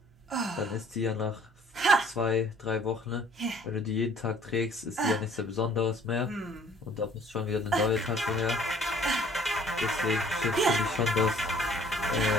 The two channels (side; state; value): both; normal; correlation 0.57